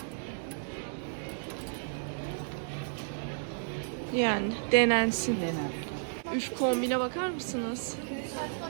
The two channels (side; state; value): left; silent; digital silence